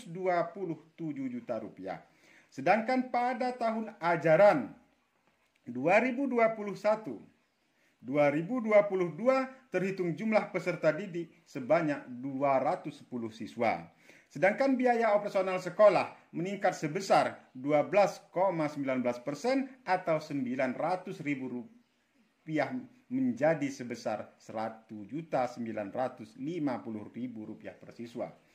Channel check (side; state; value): both; identical; correlation 1.00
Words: juta. Sedangkan pada tahun ajaran 2021-2022 terhitung jumlah peserta didik sebanyak 210 siswa. Sedangkan biaya operasional sekolah meningkat sebesar 12,19% atau Rp900.000 menjadi sebesar Rp1.950.000 per siswa.